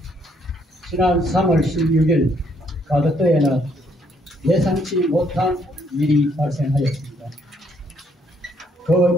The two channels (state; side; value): normal; both; correlation 0.69